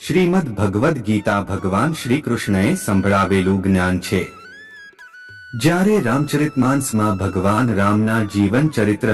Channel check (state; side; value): identical; both; correlation 1.00